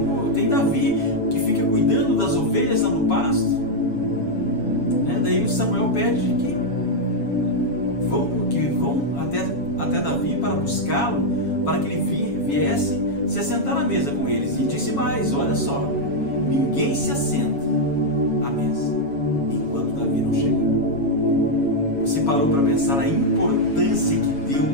tem Davi que fica cuidando das ovelhas lá no pasto. Daí o Samuel pede que vão até Davi para buscá-lo, para que ele viesse se assentar à mesa com eles. E disse mais: olha só, ninguém se assenta à mesa enquanto Davi não chega. Você parou para pensar a importância que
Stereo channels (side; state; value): right; late; 7.2 ms